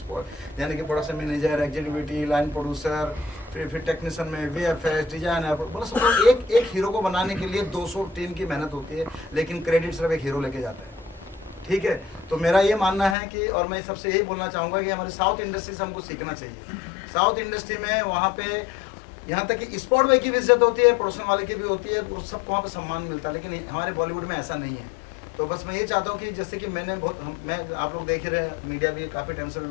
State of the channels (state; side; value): drops out; right; at 13.2 s